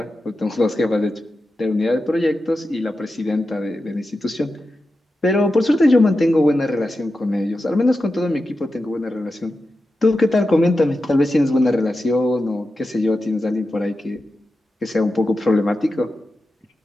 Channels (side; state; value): both; normal; correlation 0.91